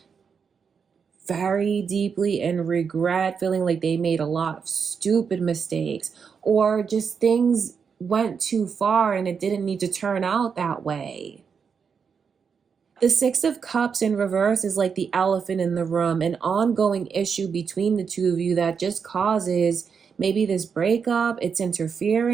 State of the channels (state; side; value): quieter; left; 6.3 dB